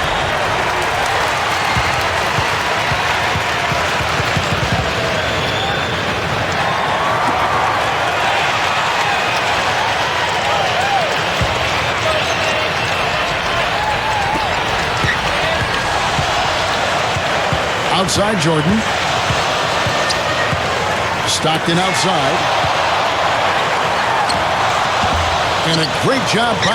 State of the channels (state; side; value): identical; both; correlation 1.00